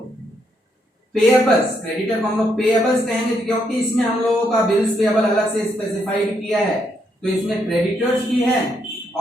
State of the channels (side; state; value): both; normal; correlation 0.76